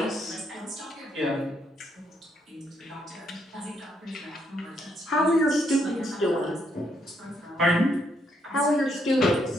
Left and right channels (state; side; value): normal; both; correlation 0.74